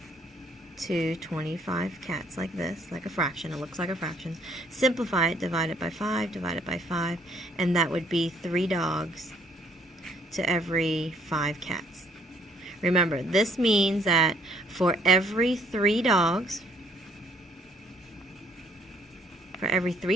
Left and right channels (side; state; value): both; normal; correlation 0.64